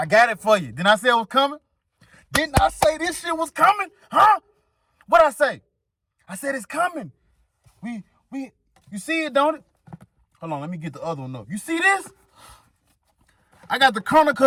got it for you. Didn't I say it was coming? Didn't I say this shit was coming? Huh? What'd I say? I said it's coming. You see it, don't it? Hold on, let me get the other one up. You see this? I got the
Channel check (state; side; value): identical; both; correlation 1.00